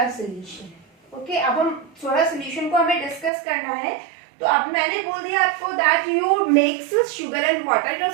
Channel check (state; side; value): drops out; left; at 3.3 s